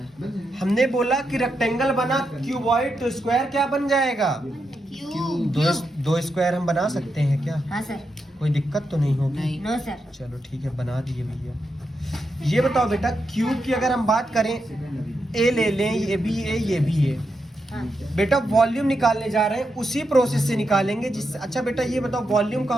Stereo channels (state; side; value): normal; both; correlation 0.85